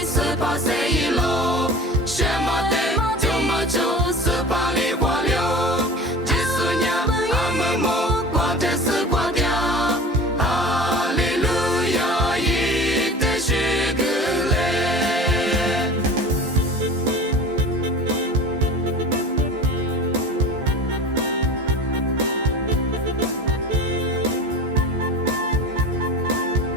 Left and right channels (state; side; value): normal; both; correlation 0.37